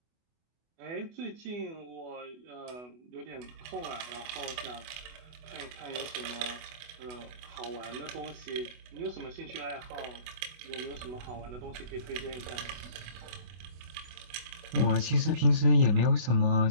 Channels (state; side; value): late; left; 24 ms